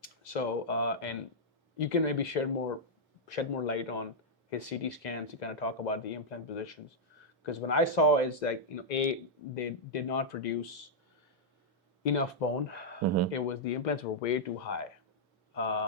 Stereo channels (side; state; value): both; normal; correlation -0.06